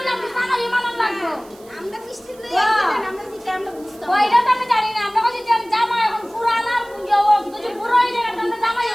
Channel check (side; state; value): right; noise; hiss, 26 dB below the sound